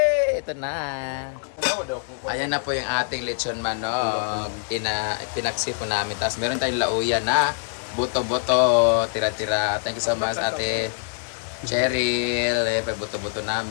Ito na. Ayan na po yung ating lechon manok. Tinaksi po namin. Tapos meron tayong lauya na buto-buto, tira-tira. Thank you so much, Ate Cheryl. Pagbuto-buto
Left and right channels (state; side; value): silent; right; digital silence